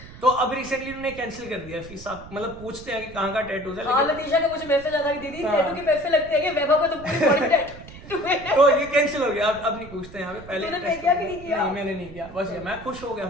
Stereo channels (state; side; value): noise; right; rumble, 16 dB below the sound